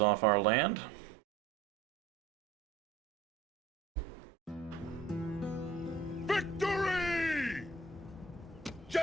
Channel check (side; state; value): left; quieter; 4.0 dB